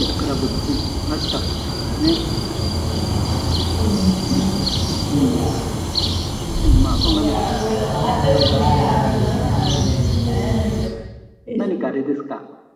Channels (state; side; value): identical; both; correlation 1.00